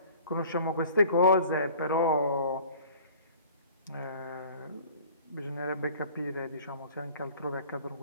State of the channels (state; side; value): inverted; both; correlation -0.47